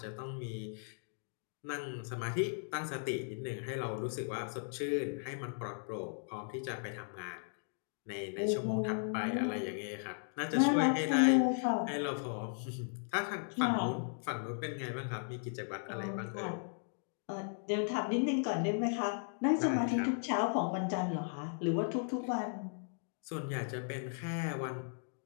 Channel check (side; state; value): right; silent; digital silence